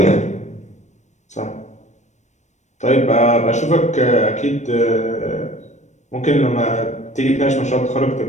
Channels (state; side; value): late; right; 0.34 ms